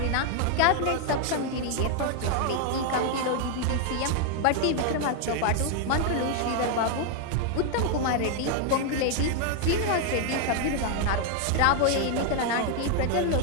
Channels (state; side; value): different; both; correlation 0.00